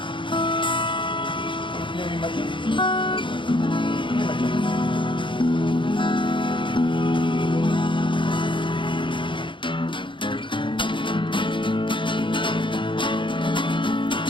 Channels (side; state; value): right; late; 0.24 ms